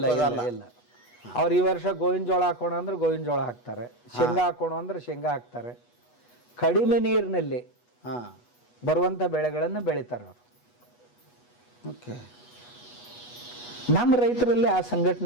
ಇಲ್ಲ. ಅವ್ರು ಈ ವರ್ಷ ಗೋವಿನ ಜೋಳ ಹಾಕೋಣ ಅಂದ್ರೆ ಗೋವಿನ ಜೋಳ ಹಾಕ್ತಾರೆ, ಶೇಂಗಾ ಹಾಕೋಣ ಅಂದ್ರೆ ಶೇಂಗಾ ಹಾಕ್ತಾರೆ. ಕಡಿಮೆ ನೀರಿನಲ್ಲಿ ಬರುವಂಥ ಬೆಳೆಗಳನ್ನು ಬೆಳಿತಾರೆ ಅವರು. ಓಕೆ. ನಮ್ಮ ರೈತರಲ್ಲಿ ಆ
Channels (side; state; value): right; late; 8.2 ms